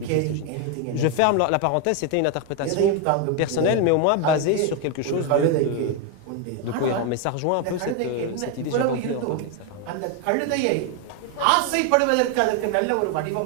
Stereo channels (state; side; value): different; both; correlation 0.01